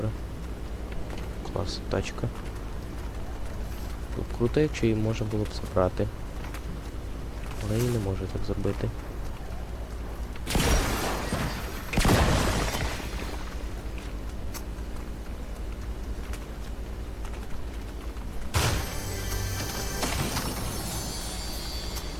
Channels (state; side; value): identical; both; correlation 1.00